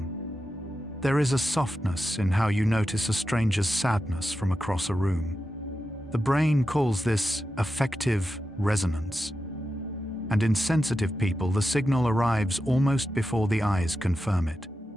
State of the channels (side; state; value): both; normal; correlation 0.90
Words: There is a softness in how you notice a stranger's sadness from across a room. The brain calls this affective resonance. And in sensitive people, the signal arrives almost before the eyes confirm it.